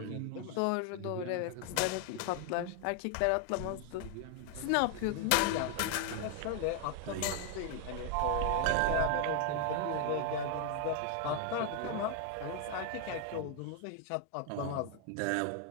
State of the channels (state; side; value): different; both; correlation 0.00